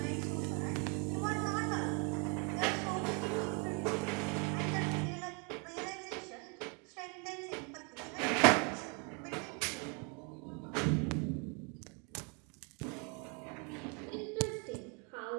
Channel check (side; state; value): left; quieter; 34.4 dB